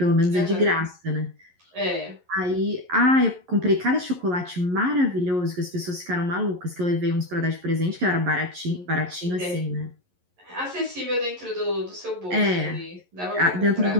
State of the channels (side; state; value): left; late; 11 ms